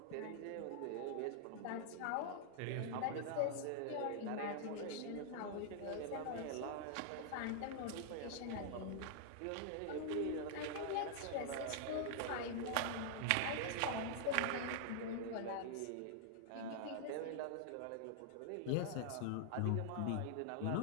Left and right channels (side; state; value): both; different; correlation -0.01